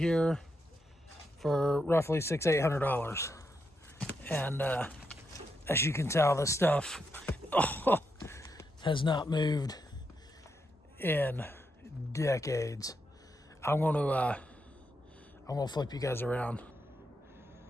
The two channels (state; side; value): normal; both; correlation 0.83